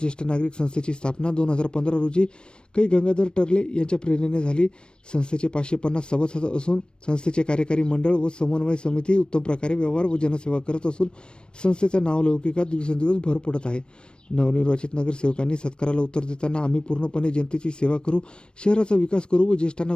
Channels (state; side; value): late; right; 0.053 ms